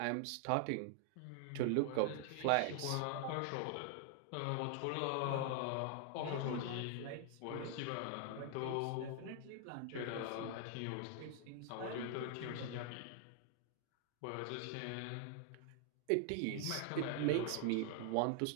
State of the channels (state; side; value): different; both; correlation 0.00